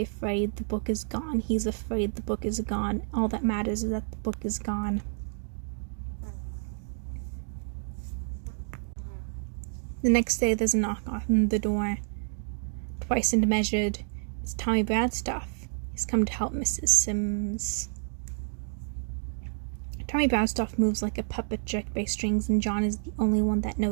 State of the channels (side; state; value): left; silent; digital silence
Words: afraid the book is gone. He's afraid the book is gone. All that matters is that the book is gone. The next day there's a knock on the door. Twice and measured. It's Tommy Bradstoff. He's come to help Mrs. Sims. Tommy Bradstoff moves like a puppet jerked by strings, and John is the only one that